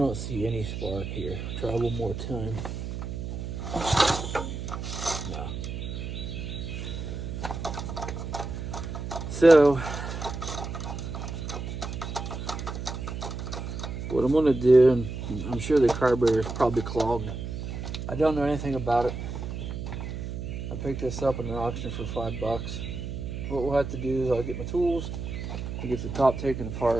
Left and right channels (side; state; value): right; noise; hum, 6 dB below the sound